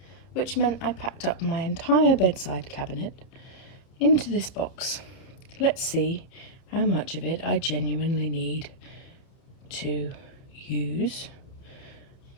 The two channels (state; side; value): late; right; 30 ms